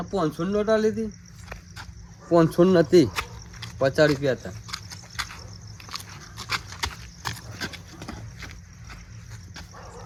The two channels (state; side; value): identical; both; correlation 1.00